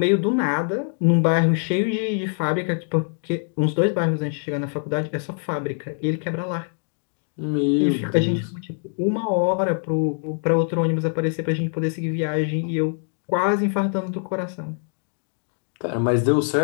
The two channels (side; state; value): right; silent; 56 dB below the other